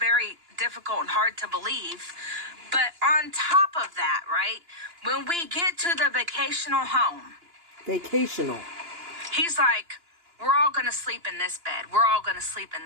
difficult and hard to believe. But on top of that, right, when we get to the vacational home. He's like, "We're all going to sleep in this bed. We're all going to sleep in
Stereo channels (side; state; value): left; late; 2.9 ms